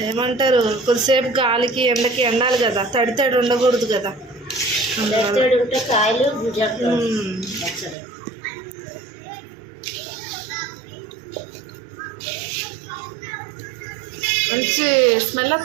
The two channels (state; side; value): drops out; left; at 8.0 s